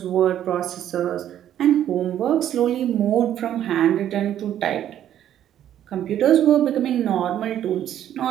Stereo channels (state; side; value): quieter; left; 11.0 dB